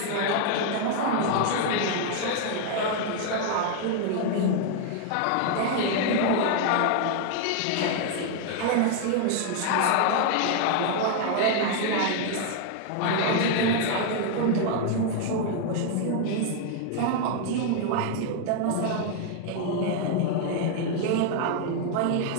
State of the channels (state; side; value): different; both; correlation 0.00